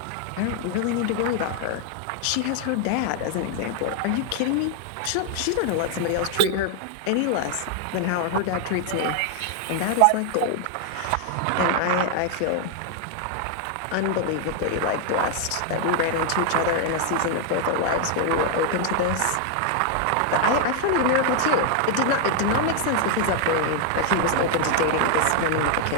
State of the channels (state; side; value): different; both; correlation 0.00